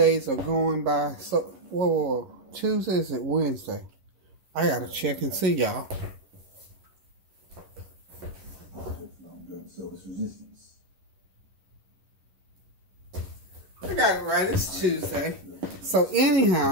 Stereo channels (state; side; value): late; left; 11 ms